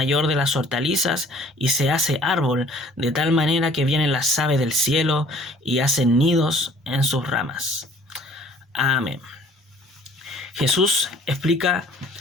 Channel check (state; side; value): normal; both; correlation 0.54